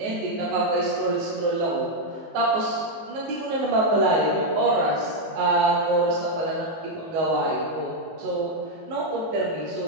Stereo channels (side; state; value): left; late; 19 ms